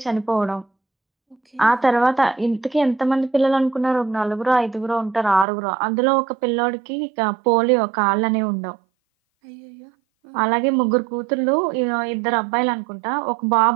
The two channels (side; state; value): left; drops out; at 5.5 s